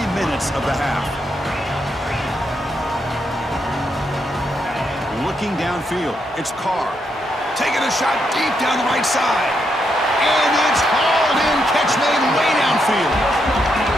minutes of the half. Looking downfield, it's Carr. Taking a shot deep down the right side. And it's hauled in. Catch made way downfield.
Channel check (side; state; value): both; normal; correlation 0.80